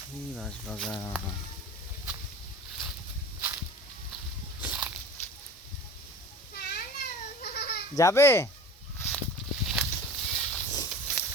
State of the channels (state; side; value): normal; both; correlation 0.38